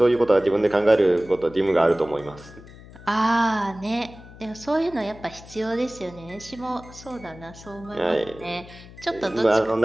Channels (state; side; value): noise; left; hum, 19 dB below the sound